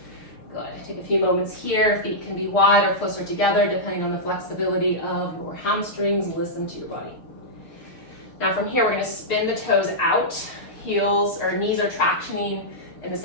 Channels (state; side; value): late; right; 6.6 ms